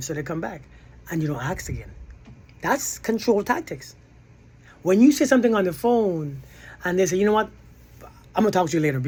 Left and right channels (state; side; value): identical; both; correlation 1.00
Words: so they come back. And you don't ask again. That's control tactics. When you say something on the phone and they say, you know what, I'm gonna talk to you later